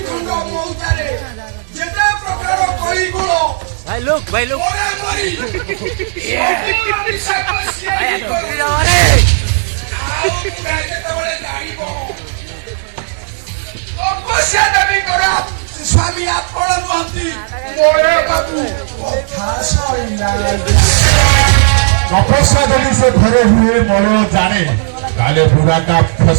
ଖଣ୍ଡ ମଉତାରେ ଯେତେ ପ୍ରକାର କଳିଗୁଣ ଭାଇ ଲୋକ ମରାମରି ସବୁର ନିଶାକୁ ସିଏ କରେ। ଆଉ ଯେତେବେଳେ ଜାଣିବ ତପସ୍ୟା ଦେବୀଙ୍କର ସ୍ୱାମୀ ଆପଣ ନୁହନ୍ତି ମଳେ ବାବୁ କଥା ସରିଲା। ତପସ୍ୟା ଯଦି ସେ ଘରେ ହୁଏ ମଳୟ ଜାଣେ ତାହେଲେ ବୁଢ଼ାଟା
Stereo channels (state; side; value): silent; left; digital silence